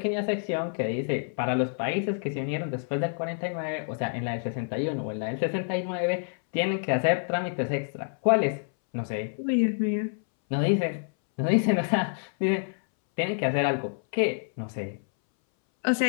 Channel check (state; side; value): silent; right; 60 dB below the other